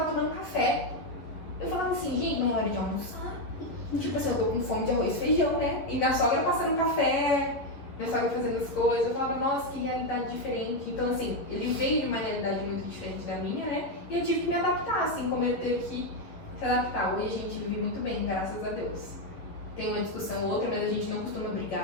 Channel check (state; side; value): late; right; 11 ms